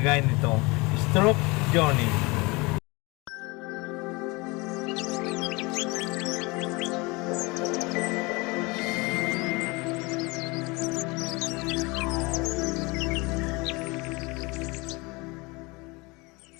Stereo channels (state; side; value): quieter; right; 25.6 dB